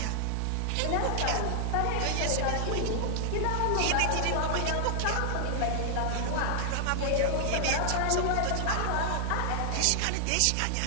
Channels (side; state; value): both; different; correlation 0.00